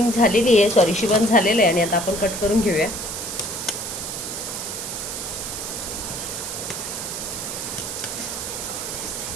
झालेली आहे, सॉरी शिवण झालेलं आहे. आणि आता आपण कट करून घेऊया.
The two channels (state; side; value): noise; right; hiss, 5 dB below the sound